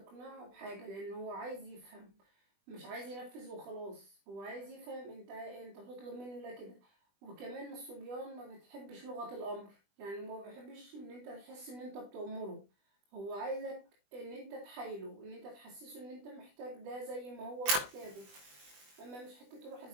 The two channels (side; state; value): left; late; 20 ms